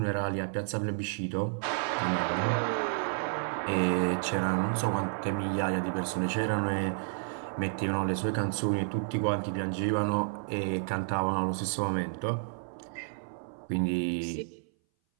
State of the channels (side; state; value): left; silent; 57 dB below the other